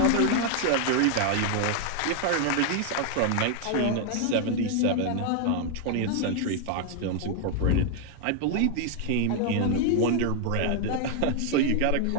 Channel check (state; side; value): different; both; correlation 0.00